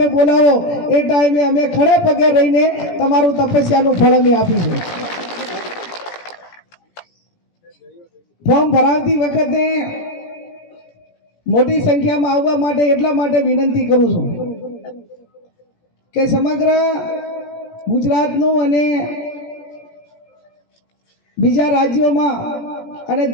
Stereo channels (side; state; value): right; late; 17 ms